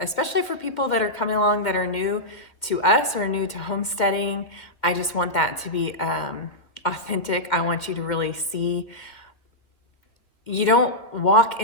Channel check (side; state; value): right; late; 2.1 ms